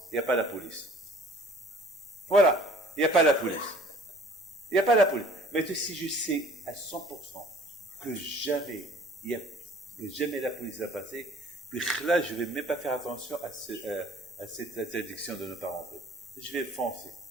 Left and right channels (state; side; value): normal; both; correlation 0.52